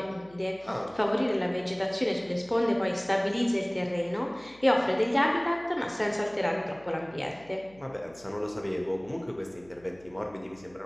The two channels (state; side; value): noise; left; hum, 26 dB below the sound